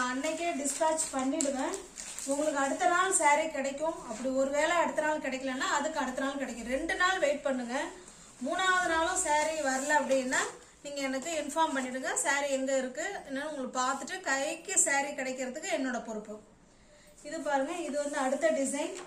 அன்னைக்கே டிஸ்பேட்ச் பண்ணிடுவேன். உங்களுக்கு அடுத்த நாள் சாரி கிடைக்கும். அப்படி ஒருவேளை அடுத்த நாள் கிடைக்கலன்னா அதுக்கு அடுத்த நாள் கிடைக்கும். 2 நாள் வெயிட் பண்ணுங்க. 3வது நாளும் சாரி வரல அப்படின்னா நீங்க எனக்கு இன்ஃபார்ம் பண்ணிடுங்க, சாரி எங்க இருக்கு என்னன்னு உங்களுக்கு பார்த்துட்டு கைக்கு சாரி கிடைக்கிறதுக்கு என்னோட பொறுப்பு. இது பாருங்க, இது வந்து அடுத்த டிசைன்.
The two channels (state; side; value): identical; both; correlation 1.00